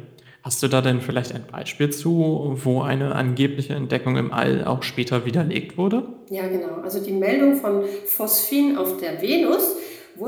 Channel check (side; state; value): both; identical; correlation 1.00